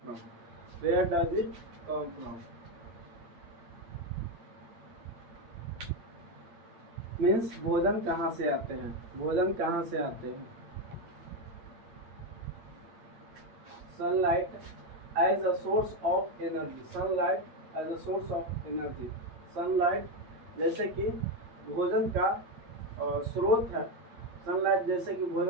from? Where does it come from? Means भोजन कहाँ से आते हैं, भोजन कहाँ से आते हैं। Sunlight as a source of energy, sunlight as a source of energy. Sunlight जैसे कि भोजन का स्रोत है, सनलाइट जैसे कि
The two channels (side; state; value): left; late; 8.8 ms